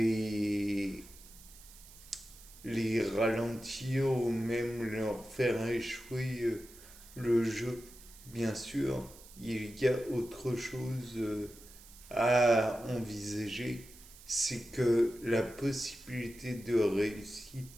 les ralentir ou même leur faire échouer le jeu. Bien sûr, il y a autre chose à envisager, c'est que la possibilité de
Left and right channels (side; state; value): right; noise; hiss, 20 dB below the sound